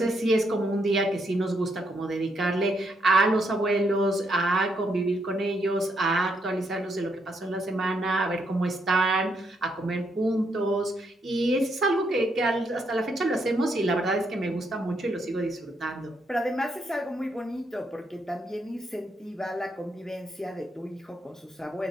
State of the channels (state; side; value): normal; both; correlation 0.76